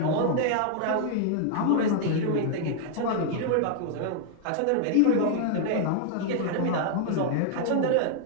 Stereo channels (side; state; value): both; different; correlation 0.00